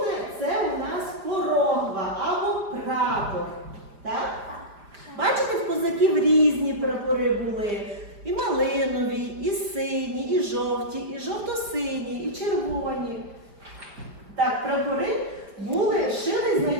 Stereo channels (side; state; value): left; late; 5.0 ms